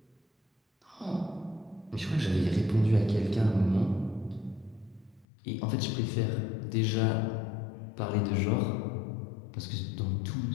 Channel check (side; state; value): right; drops out; at 5.2 s